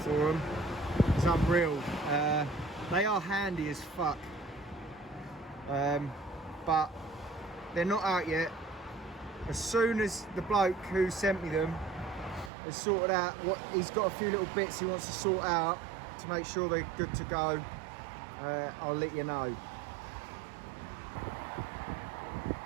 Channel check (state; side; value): drops out; left; at 12.5 s